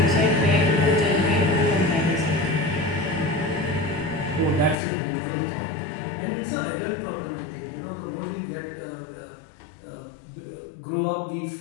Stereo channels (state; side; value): drops out; right; at 4.8 s